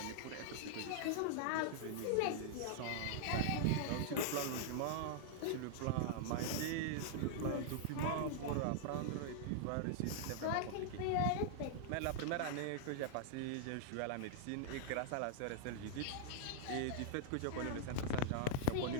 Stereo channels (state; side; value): different; both; correlation -0.01